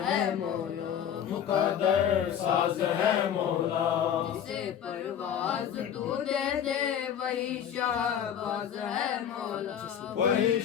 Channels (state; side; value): quieter; right; 9.0 dB